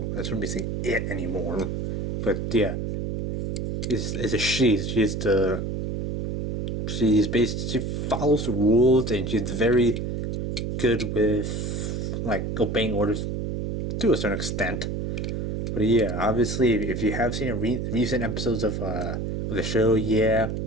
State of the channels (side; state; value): right; noise; hum, 3 dB below the sound